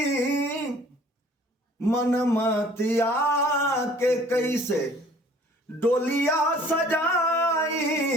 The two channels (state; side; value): normal; both; correlation 0.53